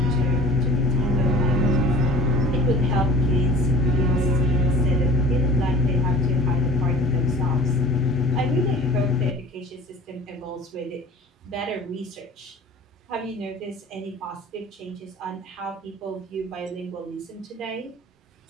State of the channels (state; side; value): normal; both; correlation 0.45